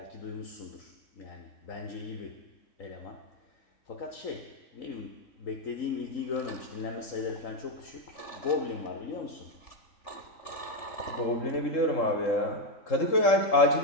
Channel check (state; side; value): late; right; 3.7 ms